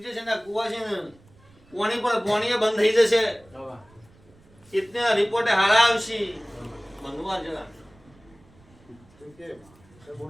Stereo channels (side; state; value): right; noise; rumble, 28 dB below the sound